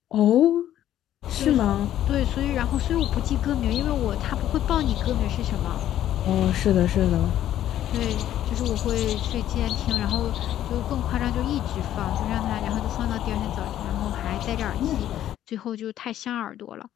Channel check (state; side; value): quieter; right; 11.9 dB